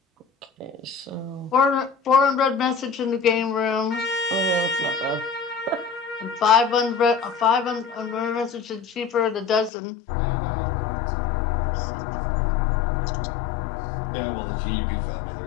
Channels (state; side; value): drops out; right; at 9.7 s